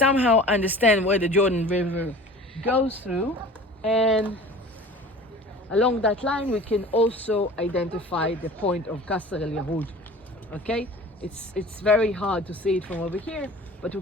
understand where the Jordan River goes through, and along that line we can also identify the point of Qasr el-Yahud, okay? It's very hard to see it from over here, but we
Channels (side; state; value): both; normal; correlation 0.42